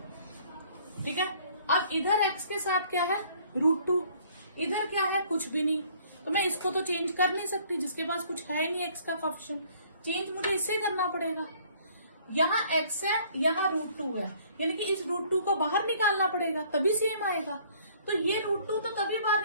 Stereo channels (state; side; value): inverted; both; correlation -0.58